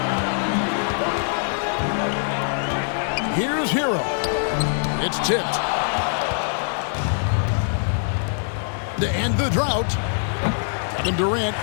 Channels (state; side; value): silent; right; 63 dB below the other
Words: Here's Hero. It's tipped. To end the drought, Kevin Durant